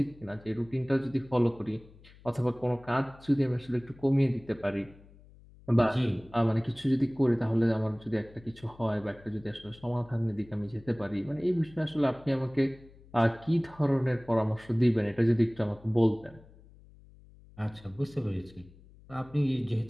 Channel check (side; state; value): left; noise; hum, 24 dB below the sound